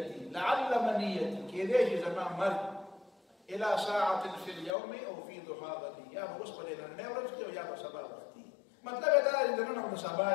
لعل منيتي کېدای شي زما مرګ إلى ساعة في اليوم أو في ضحى غدي یا به اوس په نننۍ ورځ کې او یا به سبا وخت وي مطلب یې دا دی د نن خو د سبا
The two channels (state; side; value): drops out; right; at 4.7 s